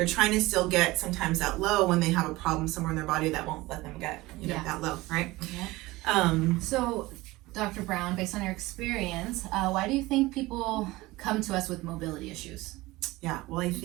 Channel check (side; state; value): left; quieter; 20.0 dB